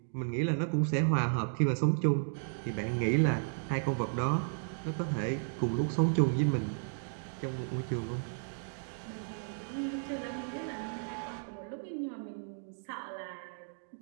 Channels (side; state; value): left; silent; digital silence